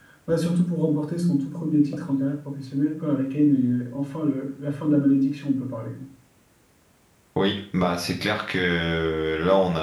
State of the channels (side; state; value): both; identical; correlation 1.00